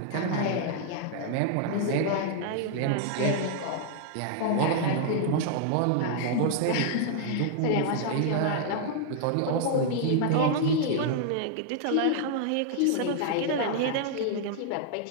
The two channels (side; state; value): both; different; correlation -0.01